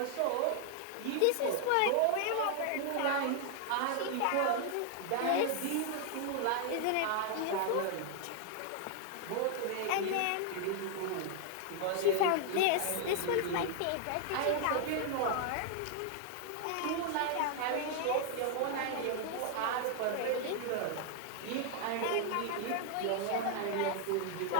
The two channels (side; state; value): both; different; correlation 0.00